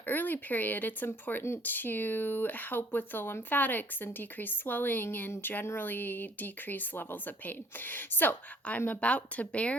early period, it's important to help with the lymphatics and decrease swelling and generally decrease levels of pain. So, I'm about to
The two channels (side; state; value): both; normal; correlation 0.59